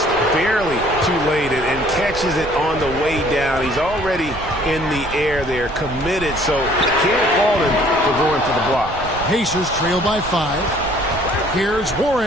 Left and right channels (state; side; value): noise; right; rumble, 13 dB below the sound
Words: barely too late and catches it on the way down. He's already in the air there, committed, so can't fault him for going for the block. Pacers trail by 5. Here's